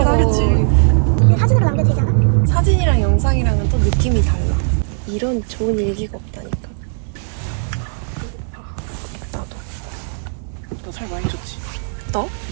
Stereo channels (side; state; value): left; silent; digital silence